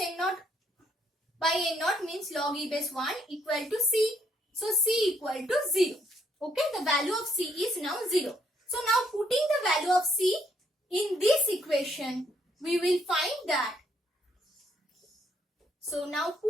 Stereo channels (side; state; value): both; normal; correlation 0.71